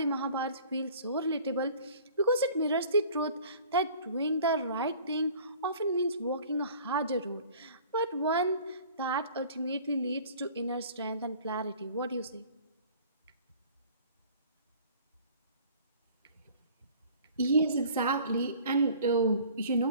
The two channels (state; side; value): inverted; both; correlation -0.49